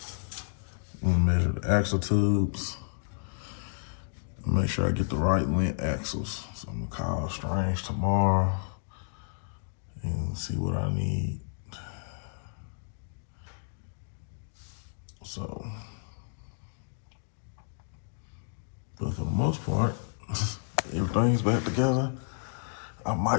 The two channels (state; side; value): silent; right; digital silence